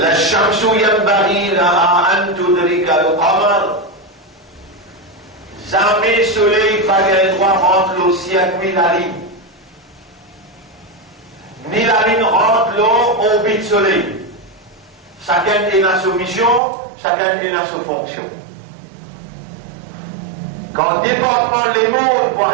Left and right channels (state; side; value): drops out; left; at 16.6 s